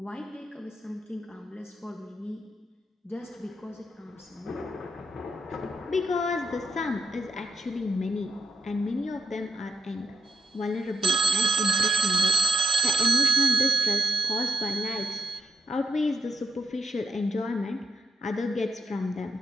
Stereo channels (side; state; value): both; normal; correlation 0.79